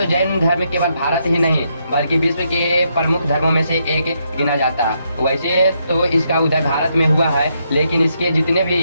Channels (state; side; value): inverted; both; correlation -0.77